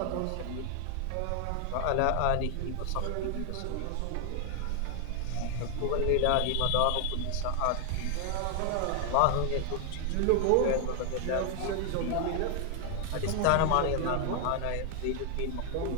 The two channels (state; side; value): different; both; correlation 0.00